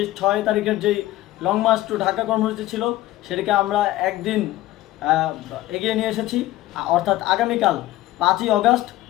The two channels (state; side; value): quieter; right; 15.8 dB